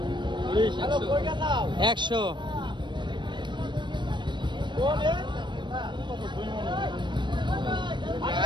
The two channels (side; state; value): left; late; 0.22 ms